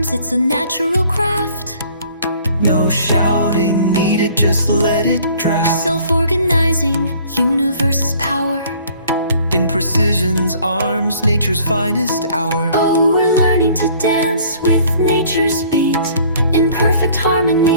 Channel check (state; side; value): inverted; both; correlation -0.55